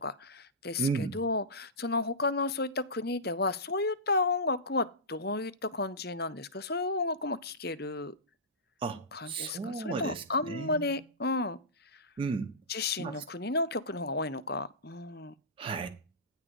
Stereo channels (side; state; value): both; normal; correlation -0.19